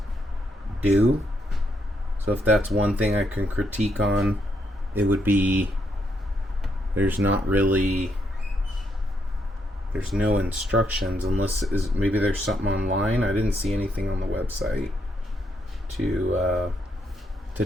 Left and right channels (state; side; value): normal; both; correlation 0.77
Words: do. So if that's one thing I can critique on, it would be there's no instructions, unless maybe there's something online. I didn't see anything on the website to